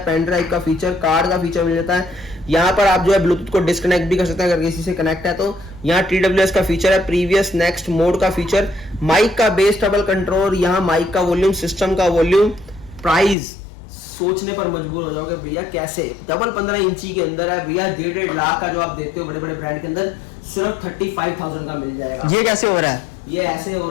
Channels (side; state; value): right; drops out; at 13.4 s